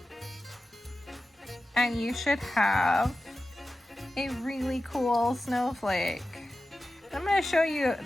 And you should have a really cool snowflake. I'm going to show you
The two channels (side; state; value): both; normal; correlation 0.94